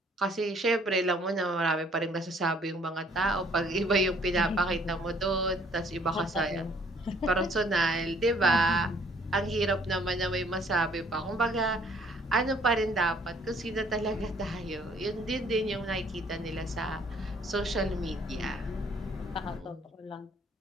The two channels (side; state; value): both; normal; correlation 0.61